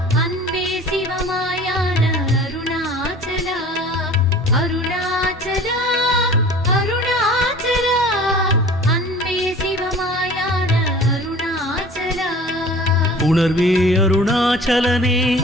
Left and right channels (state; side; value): normal; both; correlation 0.44